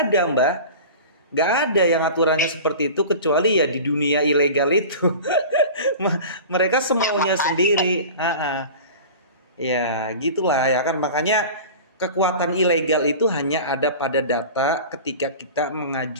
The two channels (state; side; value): inverted; both; correlation -0.36